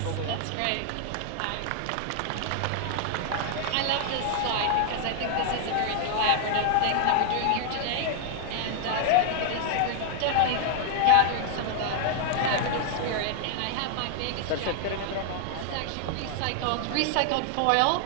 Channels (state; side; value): different; both; correlation 0.00